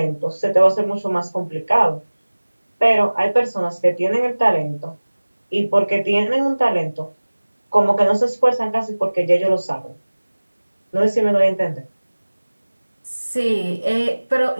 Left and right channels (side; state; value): both; inverted; correlation -1.00